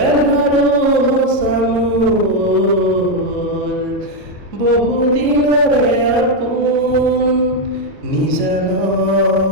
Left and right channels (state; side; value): late; left; 3.5 ms